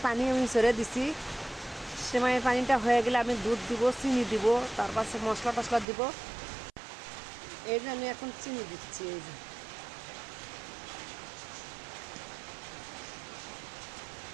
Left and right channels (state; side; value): drops out; left; at 5.9 s